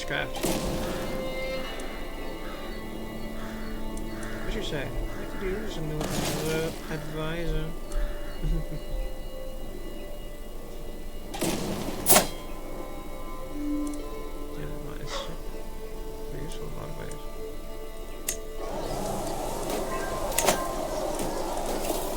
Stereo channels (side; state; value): both; identical; correlation 1.00